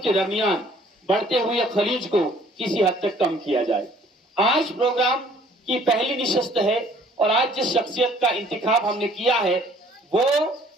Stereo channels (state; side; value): normal; both; correlation 0.57